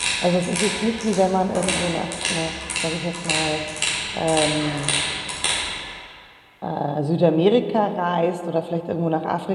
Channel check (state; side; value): identical; both; correlation 1.00